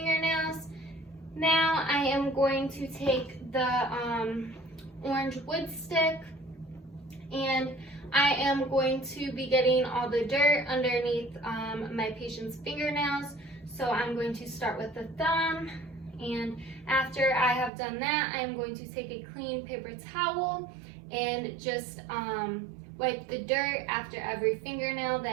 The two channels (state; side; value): drops out; left; at 17.7 s